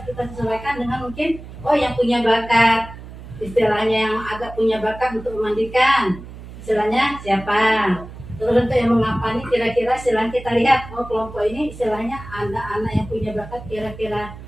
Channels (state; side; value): noise; right; hum, 14 dB below the sound